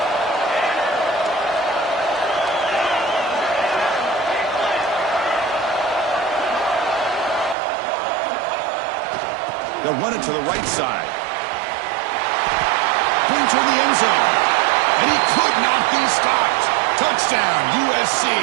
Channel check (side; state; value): left; drops out; at 7.6 s